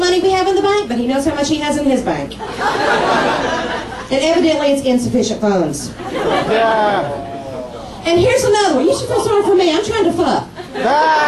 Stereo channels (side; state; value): both; identical; correlation 1.00